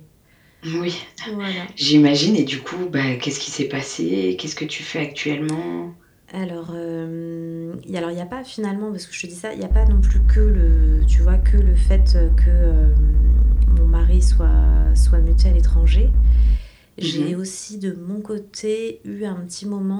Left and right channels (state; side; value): identical; both; correlation 1.00